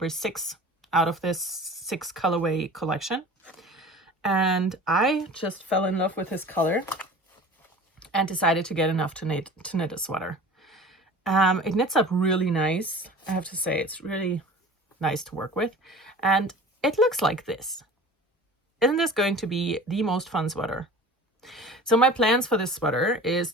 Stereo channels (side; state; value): both; normal; correlation 0.40